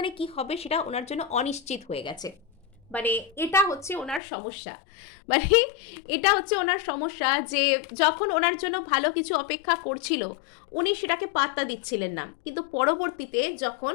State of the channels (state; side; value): drops out; right; at 4.2 s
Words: কি হবে সেটা ওনার জন্য অনিশ্চিত হয়ে গেছে। মানে এটা হচ্ছে ওনার সমস্যা, মানে এটা হচ্ছে ওনার সমস্যা যে যখন ওনার জন্য ভালো কিছু অপেক্ষা করছিল উনি সেটাকে পাত্তা দিচ্ছিলেন না, কিন্তু পরবর্তীতে যখন